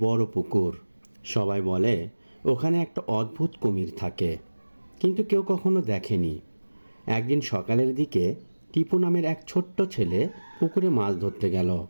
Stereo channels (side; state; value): both; inverted; correlation -1.00